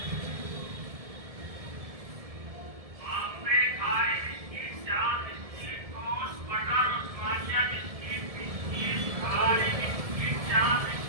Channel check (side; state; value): left; late; 1.7 ms